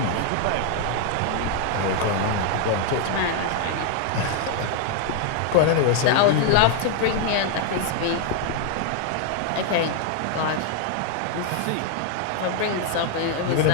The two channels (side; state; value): both; different; correlation 0.00